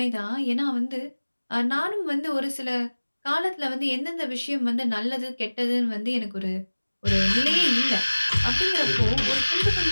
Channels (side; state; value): both; inverted; correlation -1.00